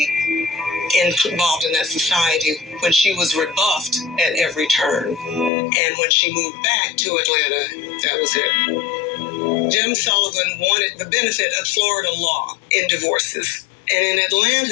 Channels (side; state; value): right; drops out; at 5.5 s